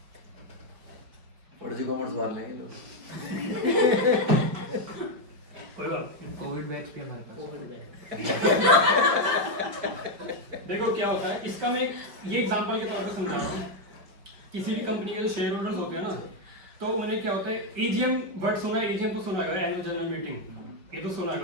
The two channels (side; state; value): left; late; 5.1 ms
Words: और जो कॉमर्स वाले हैं लोग कोई बात नहीं। कोविड बैच भी हमारे पास। देखो क्या होता है, इसका मैं ये एग्जांपल के तौर पे समझा रहा हूँ। किसी भी कंपनी के जो शेयर होल्डर्स होते हैं ना, तो उन्हें क्या होता है, एजीएम वर्ड सुना है, एजीएम तो सुना है, एनुअल जनरल मीटिंग, ये तो सुना